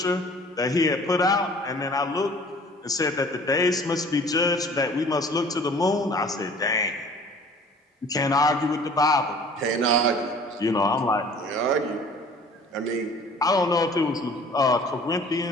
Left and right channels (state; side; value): normal; both; correlation 0.49